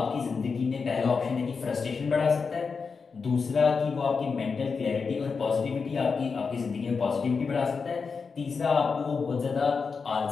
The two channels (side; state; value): right; quieter; 5.2 dB